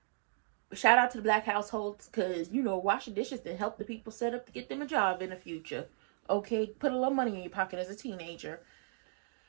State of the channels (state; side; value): silent; left; digital silence